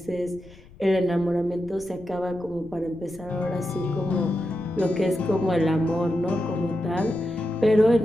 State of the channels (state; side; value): noise; left; rumble, 22 dB below the sound